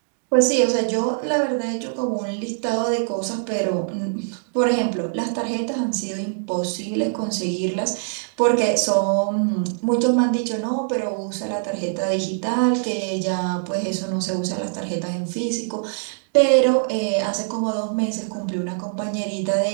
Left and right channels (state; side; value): silent; left; digital silence